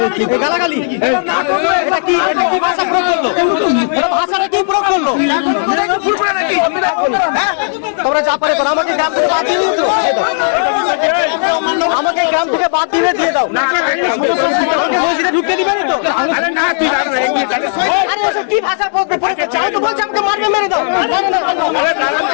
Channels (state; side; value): silent; right; digital silence